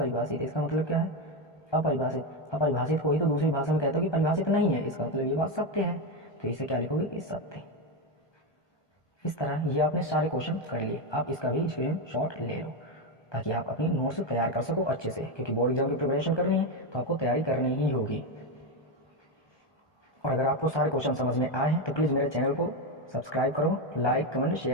इसका मतलब क्या है अपरिभाषित। अपरिभाषित को ही तो दूसरी भाषा में कहते हो कि परिभाषित नहीं है, इसका मतलब ये बात सत्य है। तो इसे क्या लिखोगे कि सत्य। इस तरह ये आपने सारे क्वेश्चन कर लिए। आप इसका भी स्क्रीनशॉट ले लो ताकि आप अपनी नोट्स तैयार कर सको अच्छे से, क्योंकि बोर्ड एग्जाम की प्रिपरेशन करनी है तो आपको तैयारी करनी ही होगी। और अगर आपको सारे क्वेश्चन समझ में आए हैं तो प्लीज़ मेरे चैनल को सब्सक्राइब करो, लाइक कमेंट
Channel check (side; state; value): right; late; 1.2 ms